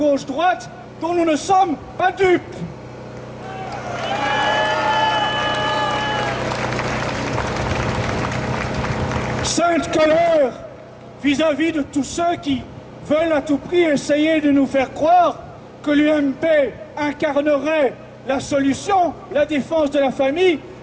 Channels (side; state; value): both; identical; correlation 1.00